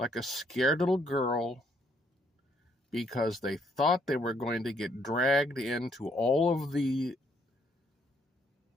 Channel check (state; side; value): normal; both; correlation 0.69